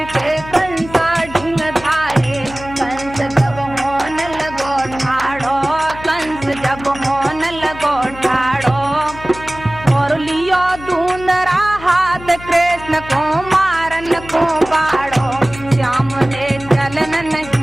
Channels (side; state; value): left; noise; hum, 15 dB below the sound